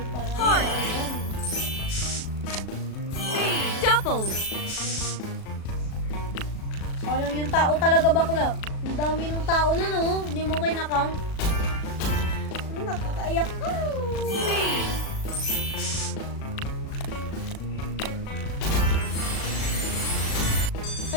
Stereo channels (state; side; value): late; right; 37 ms